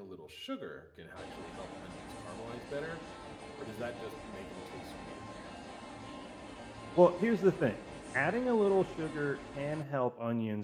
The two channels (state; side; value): identical; both; correlation 1.00